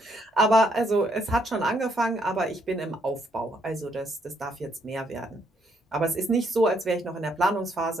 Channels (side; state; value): both; normal; correlation 0.72